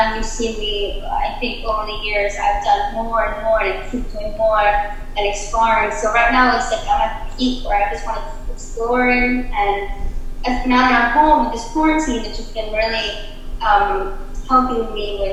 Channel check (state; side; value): identical; both; correlation 1.00